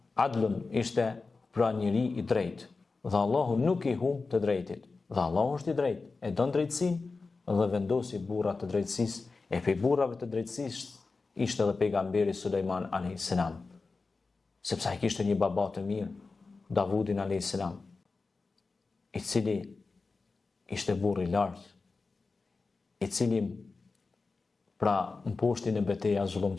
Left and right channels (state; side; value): quieter; right; 4.0 dB